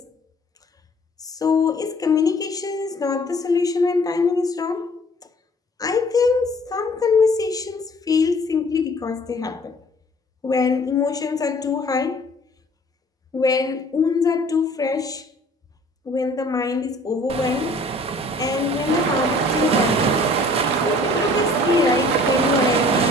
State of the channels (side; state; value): both; normal; correlation 0.53